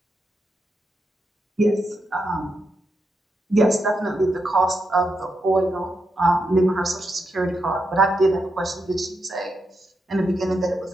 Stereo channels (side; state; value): both; normal; correlation 0.84